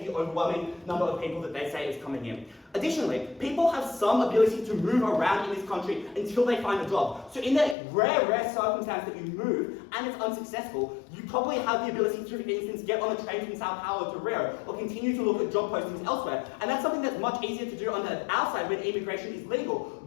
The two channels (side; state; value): right; drops out; at 7.8 s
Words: the overwhelming number of people that they say is coming in. Additionally, people have some ability to move around in this country until they find a job. So in that rare circumstance that you move and it's unsuccessful, you probably have the ability to, for instance, get on a train from Sao Paulo to Rio, or continue to look at job postings elsewhere. And that's something that's much easier to do on our side when immigration is legal,